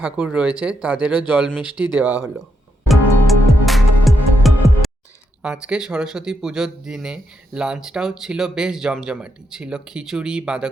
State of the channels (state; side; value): normal; both; correlation 0.81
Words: রয়েছে তাদেরও জল মিষ্টি দেওয়া হলো। আজকে সরস্বতী পুজোর দিনে লাঞ্চটাও ছিল বেশ জমজমাটি। ছিল খিচুড়ি,